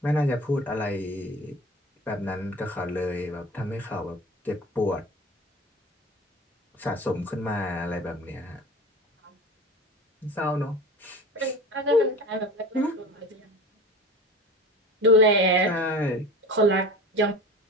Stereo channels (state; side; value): normal; both; correlation 0.36